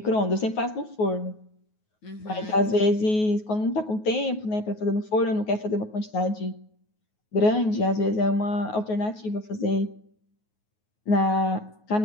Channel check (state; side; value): late; right; 9.4 ms